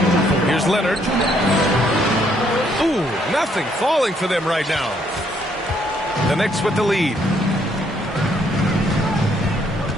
Here's Leonard. Ooh, nothing falling for them right now. The Knicks with the lead.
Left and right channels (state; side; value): normal; both; correlation 0.69